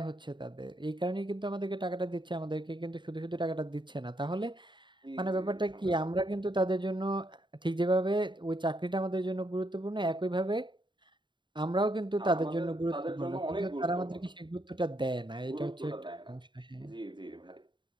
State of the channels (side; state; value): left; late; 0.23 ms